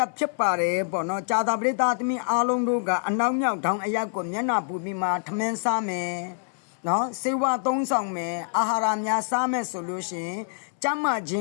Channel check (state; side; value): silent; right; 61 dB below the other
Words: က်ဖြစ်ပါတယ်ပေါ့နော်ကြာတာပရိသတ်သမီးအားလုံးတို့ကအနောက်မြောက်ထောင်အယက်ကိုမျက်နှာပူပြီးမှထမင်းစားမယ်နော်စေဝါသုံးဆောင်မယ်အာဟာရများစားမယ်ဆိုလို့ရှိရင်ကျမ်းမာခြင